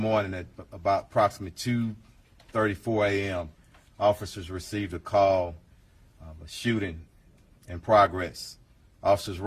at about approximately 2:34 a.m., officers received a call of a shooting in progress. Officers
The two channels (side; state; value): both; identical; correlation 1.00